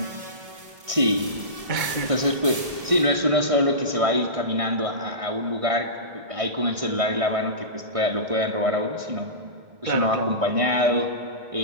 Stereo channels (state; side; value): late; left; 1.7 ms